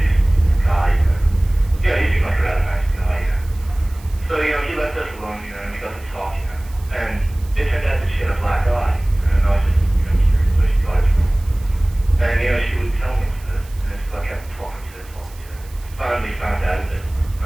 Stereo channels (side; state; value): right; noise; hiss, 24 dB below the sound